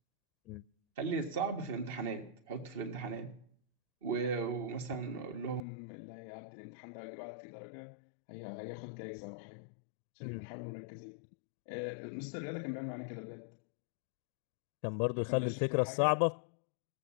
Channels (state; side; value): drops out; right; at 5.6 s